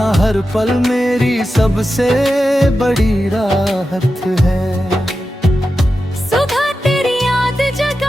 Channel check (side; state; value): both; normal; correlation 0.91